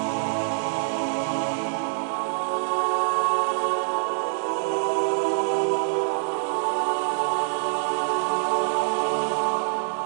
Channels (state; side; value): silent; left; digital silence